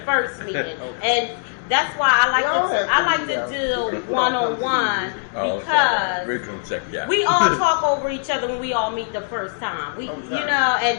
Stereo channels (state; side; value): silent; right; digital silence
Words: first meeting, and that's why I like to do one-on-one because we're gonna check it out. we all talk over each other when we all meet the first time. We, Okay. you know,